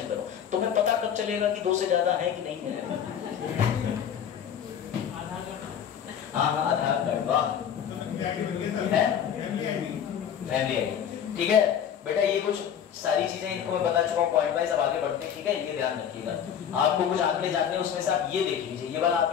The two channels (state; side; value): quieter; right; 8.7 dB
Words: करो। तुम्हें पता कब चलेगा कि 2 से ज्यादा है कि नहीं है? हाँ आधार कार्ड, वाह फैमिली आईडी, ठीक है बेटा। ये कुछ सारी चीजें इनको मैं बता चुका हूँ पॉइंट वाइज। अब आगे बढ़ते हैं, ठीक है? ये ध्यान रखिएगा, आपको कुछ आंकड़े जानने उसमें से आप ये देख लीजिए, ये वाला